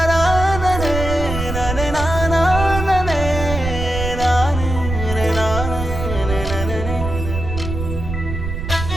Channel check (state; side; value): noise; right; rumble, 5 dB below the sound